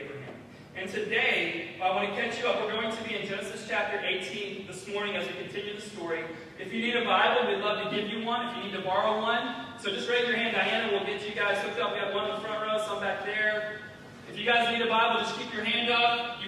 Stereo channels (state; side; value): identical; both; correlation 1.00